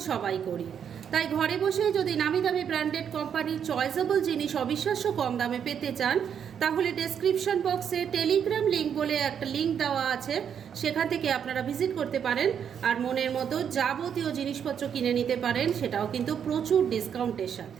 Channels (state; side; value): quieter; left; 8.1 dB